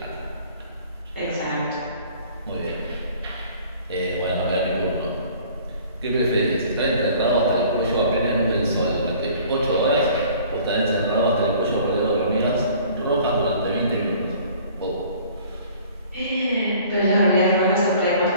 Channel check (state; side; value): inverted; both; correlation -0.51